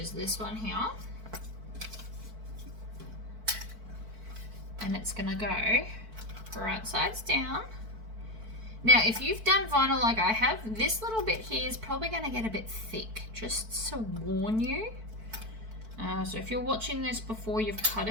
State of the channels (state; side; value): late; left; 4.5 ms